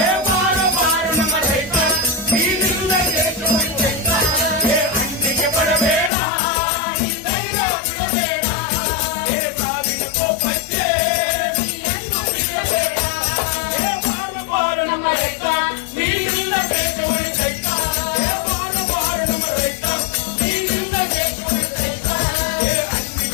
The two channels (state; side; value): drops out; right; at 6.1 s